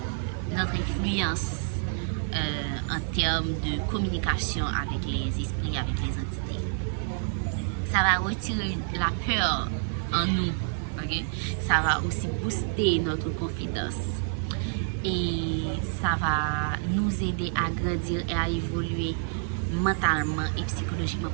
influence en termes de communication avec les esprits, avec les entités. Ça va retirer la peur en nous. Okay? Ça va aussi booster notre confiance. Et ça va nous aider à grandir et à évoluer mentalement et psychologiquement,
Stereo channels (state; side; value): silent; left; digital silence